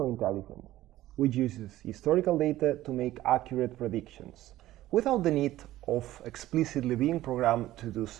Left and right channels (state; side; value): quieter; left; 15.1 dB